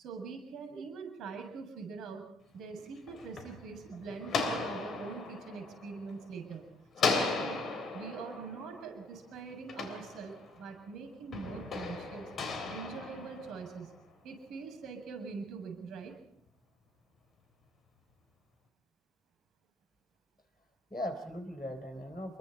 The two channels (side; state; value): both; normal; correlation 0.63